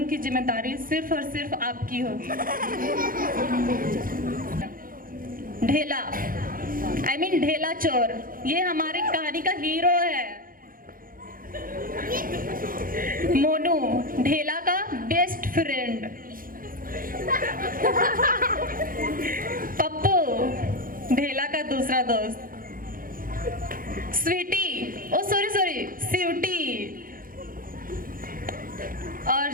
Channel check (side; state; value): left; late; 0.41 ms